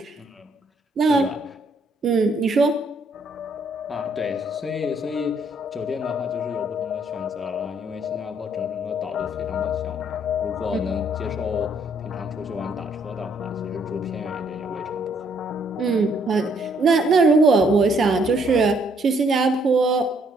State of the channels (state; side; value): normal; both; correlation 0.68